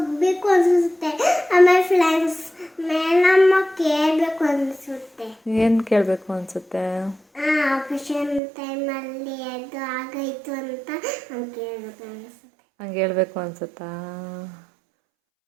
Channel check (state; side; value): drops out; left; at 8.4 s